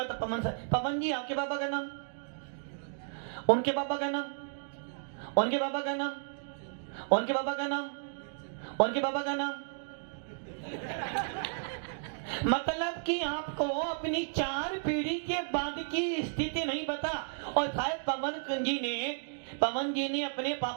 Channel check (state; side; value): silent; left; digital silence